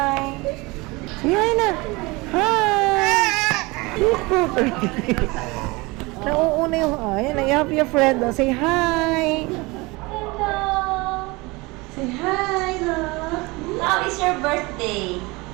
Say hi na. Hi. Nauuna yung, ayan, you have your friend, oh. Say hi. Hello! Say hi, love. How is your birthday?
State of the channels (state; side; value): quieter; left; 24.1 dB